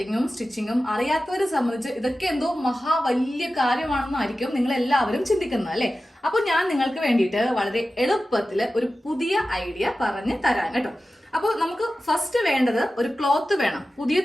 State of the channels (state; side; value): normal; both; correlation 0.94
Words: സ്റ്റിച്ചിങ്ങും അറിയാത്തവരെ സംബന്ധിച്ച് ഇതൊക്കെ എന്തോ വലിയ കാര്യമാണെന്നായിരിക്കും നിങ്ങൾ എല്ലാവരും ചിന്തിക്കുന്നത് അല്ലെ. അപ്പൊ ഞാൻ നിങ്ങൾക്ക് വേണ്ടിയിട്ട് വളരെ എളുപ്പത്തിൽ ഒരു പുതിയ ഐഡിയ പറഞ്ഞ് തരാൻ കേട്ടോ. അപ്പോൾ നമുക്ക് ഫസ്റ്റ് വേണ്ടത് ഒരു ക്ലോത്ത് വേണം. പുതിയ